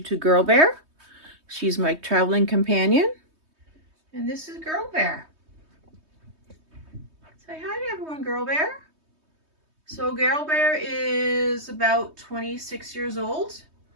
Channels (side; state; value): left; late; 3.2 ms